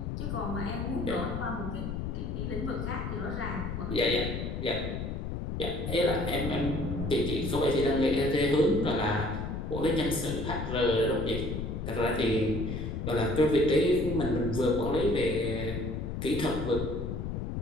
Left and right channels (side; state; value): left; noise; rumble, 4 dB below the sound